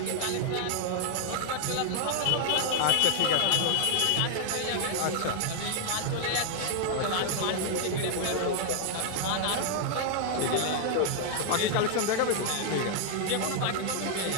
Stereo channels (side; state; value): both; different; correlation 0.00